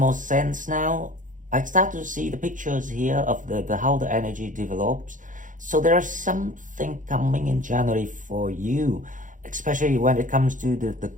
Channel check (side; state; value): left; late; 0.38 ms